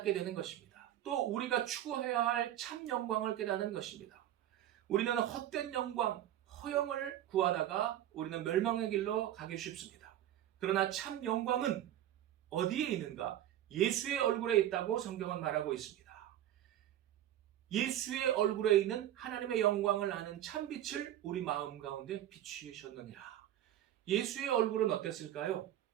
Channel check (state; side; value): quieter; left; 12.3 dB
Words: 되는 것입니다. 또 우리가 추구해야 할 참 영광을 깨닫는 것입니다. 우리는 헛된 영광, 허영을 구하다가 우리는 멸망의 길로 가기 쉽습니다. 그러나 참 영광은 어디에 있는가? 예수의 얼굴에 있다고 성경은 말하고 있습니다. 예수의 얼굴에 있는 하나님의 영광을 아는 참빛을 우리 마음 가운데 비추셨느니라. 예수의 얼굴은 어땠을까요?